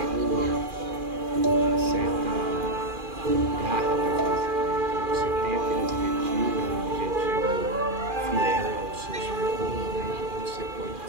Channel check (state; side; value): late; left; 2.4 ms